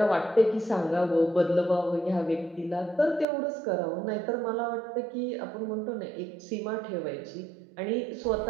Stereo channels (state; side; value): drops out; left; at 3.2 s